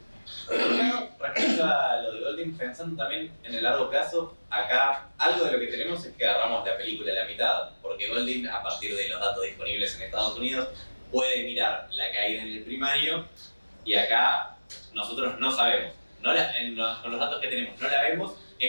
Respecto a lo de Golding, pensando también en el largo plazo, acá algo de lo que tenemos es que agarramos la película a la mitad, porque Golding, a partir de los datos disponibles en Estados Unidos, puede mirar la caída en el primario, y acá nosotros no sabemos. Con los datos que tenemos no la vemos.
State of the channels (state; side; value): inverted; both; correlation -1.00